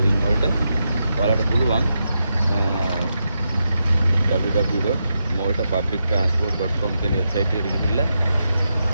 වලට ඔයාලට පුළුවන් www.maltapublictransport.com කියන වෙබ්සයිට් එකට ගිහිල්ලා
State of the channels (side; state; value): both; inverted; correlation -0.86